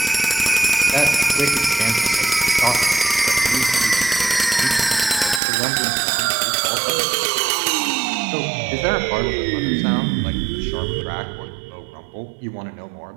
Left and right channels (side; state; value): left; drops out; at 5.4 s